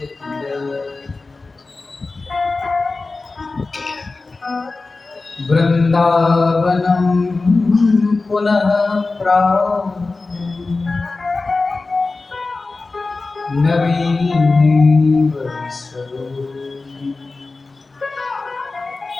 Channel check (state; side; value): quieter; right; 3.6 dB